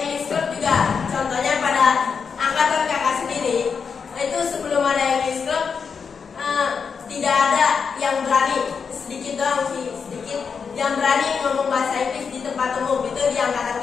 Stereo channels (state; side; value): quieter; right; 6.0 dB